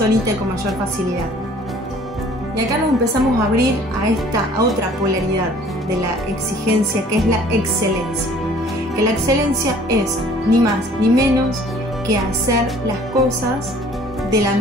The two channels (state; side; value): normal; both; correlation 0.53